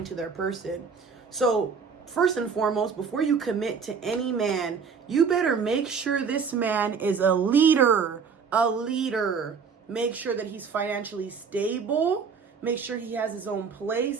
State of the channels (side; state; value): left; quieter; 5.9 dB